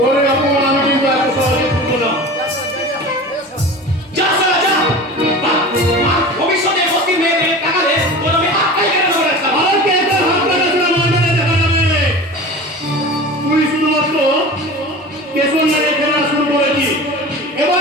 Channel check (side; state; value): both; normal; correlation 0.35